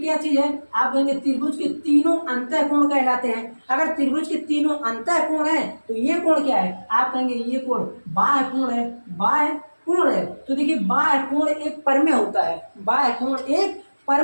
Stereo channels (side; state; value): both; inverted; correlation -1.00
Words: चीज है, आप कहेंगे त्रिभुज के तीनों अंतः कोण कहलाते हैं। अगर त्रिभुज के तीनों अंतः कोण है तो ये कोण क्या है, आप कहेंगे ये कोण बाह्य कोण है, बाह्य कोण है। तो देखिए बाह्य कोण एक परमेय होता है, बाह्य कोण एक